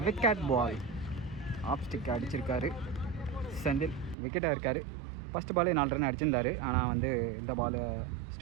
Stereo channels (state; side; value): drops out; left; at 4.2 s